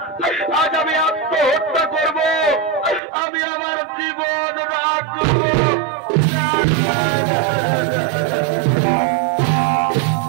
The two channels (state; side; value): drops out; left; at 3.0 s